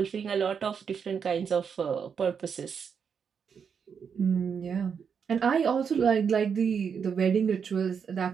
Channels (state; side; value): quieter; left; 6.7 dB